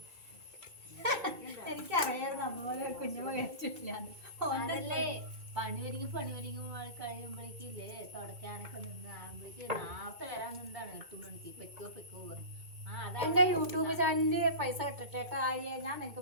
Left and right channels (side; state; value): left; late; 2.2 ms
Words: എനിക്കറിയായിരുന്നു അമ്മ കുഞ്ഞമ്മ കഴിച്ചിട്ടില്ല. പണി കഴിയുമ്പോഴേക്കില്ലേ തുടക്കാനൊക്കെ നിന്ന് ആകുമ്പോഴേക്ക് നേരത്തെ വരാൻ നിന്നാണ് 8 മണിക്ക്. പെക്കോ പറയും. എന്റെ യൂട്യൂബ് ചാനലില് പൈസ കിട്ടട്ടെ ആര്യ, ഞാൻ നിനക്ക്